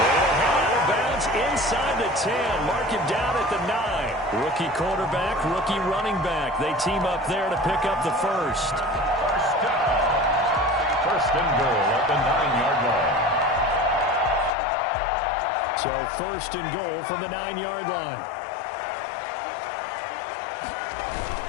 head out of bounds inside the 10. Mark him down at the 9. Rookie quarterback, rookie running back. They team up there to pick up the 1st. 1st and goal at the 9-yard line. So 1st and goal from the 9-yard line.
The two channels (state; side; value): drops out; right; at 14.5 s